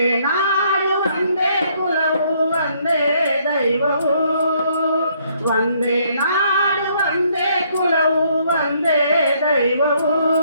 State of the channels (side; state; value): both; inverted; correlation -0.68